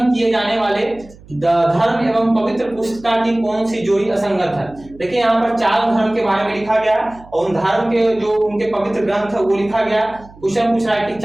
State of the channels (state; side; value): noise; right; hum, 22 dB below the sound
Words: किए जाने वाले धर्म एवं पवित्र पुस्तिका की कौन सी जोड़ी असंगत है? देखिए यहाँ पर 4 धर्म के बारे में लिखा गया और उन धर्म के जो उनके पवित्र ग्रंथ है वो लिखा गया। क्वेश्चन पूछ रहा है कि